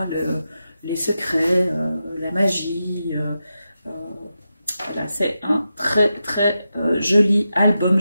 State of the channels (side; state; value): both; inverted; correlation -0.89